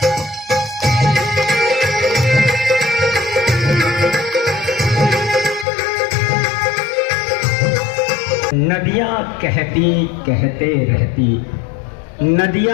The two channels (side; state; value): right; drops out; at 5.7 s